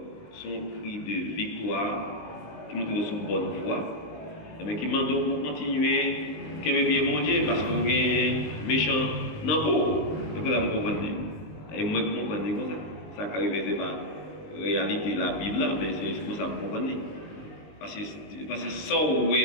son cri de victoire qui montre sous bonne voie, mais qui demande pour continuer, qu'il ait bien mon Dieu, parce qu'on est méchant dans le corps. C'est pour ça que vous comprenez. Et moi, je comprends comme ça. Ça arrive, c'est pas réalité la Bible, mais c'est pour ça que vous comprenez. Parce que sans où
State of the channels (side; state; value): right; late; 19 ms